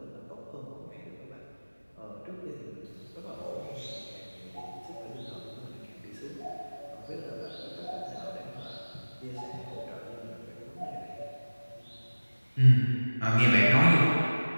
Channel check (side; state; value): both; inverted; correlation -1.00